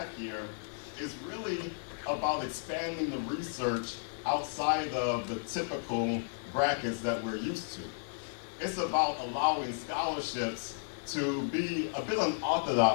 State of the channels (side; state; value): right; silent; digital silence